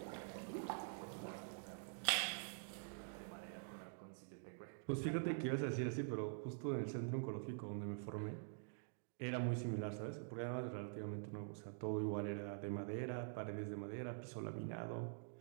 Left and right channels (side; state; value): left; silent; digital silence